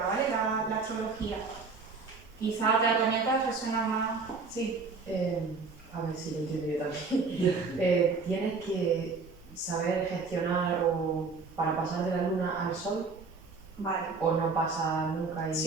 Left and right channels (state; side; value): quieter; left; 4.5 dB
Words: ¿vale? La astrología. Quizá otras herramientas resuenan más... Sí. A ver si lo entiendo yo también. Tienes que saber gestionar o para pasar de la luna al sol, Vale. o no pasa nunca y